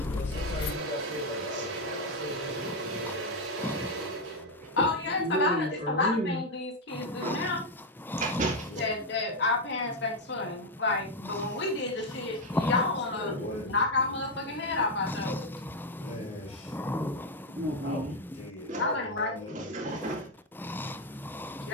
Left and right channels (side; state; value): both; normal; correlation 0.05